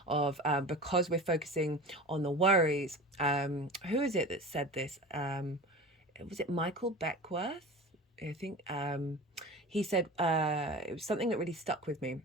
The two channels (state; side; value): normal; both; correlation 0.34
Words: of because we're focusing on the worries. Who is it that said this? Was it Michael Beckworth? I think he said it was something that really stuck with me